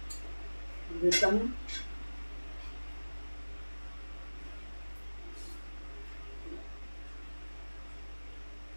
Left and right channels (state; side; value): inverted; both; correlation -1.00